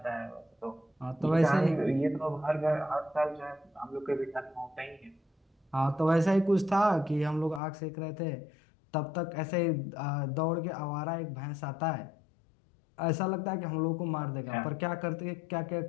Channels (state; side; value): drops out; right; at 7.6 s